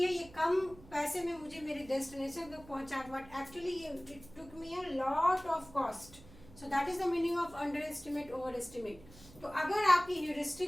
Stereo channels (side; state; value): right; noise; hum, 21 dB below the sound